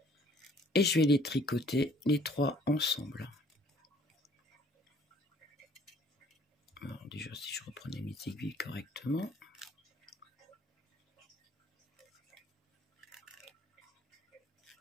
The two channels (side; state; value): both; normal; correlation 0.58